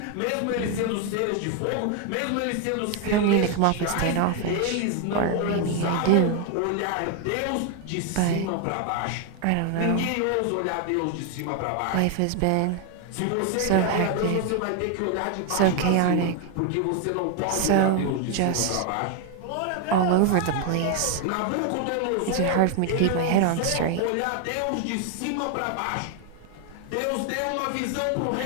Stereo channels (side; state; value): both; different; correlation 0.01